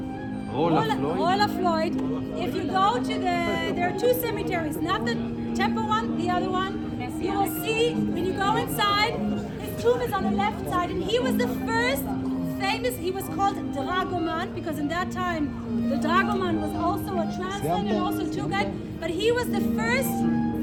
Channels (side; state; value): both; identical; correlation 1.00